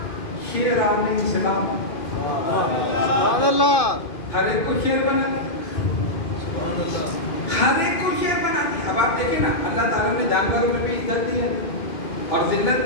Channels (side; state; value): right; late; 2.5 ms